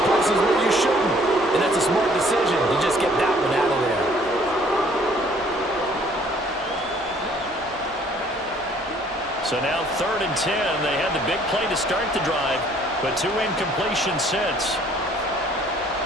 places where you shouldn't. And that's a smart decision to just get that one out of there. So now 3rd and 10. They had the big play to start the drive, but 2 incompletions since.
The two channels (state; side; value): normal; both; correlation 0.59